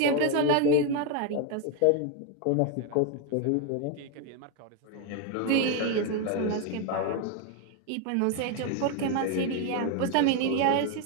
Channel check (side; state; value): both; different; correlation 0.01